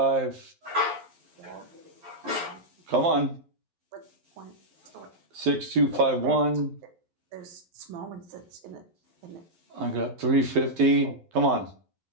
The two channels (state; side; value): late; left; 11 ms